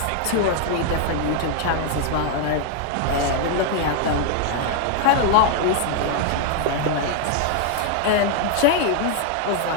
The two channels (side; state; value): both; different; correlation 0.00